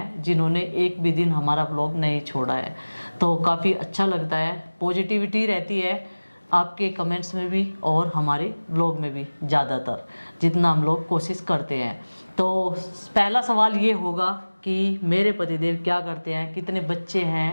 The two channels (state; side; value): inverted; both; correlation -1.00